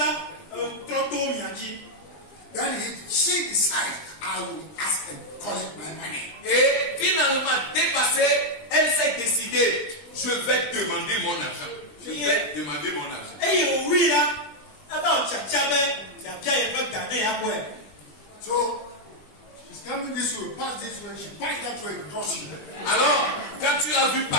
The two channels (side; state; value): right; late; 20 ms